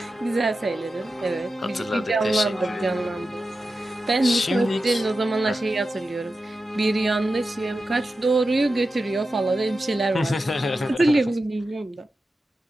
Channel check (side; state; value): both; normal; correlation 0.92